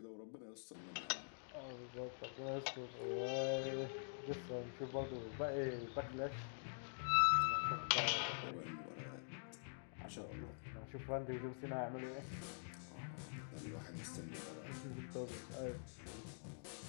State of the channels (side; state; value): right; silent; digital silence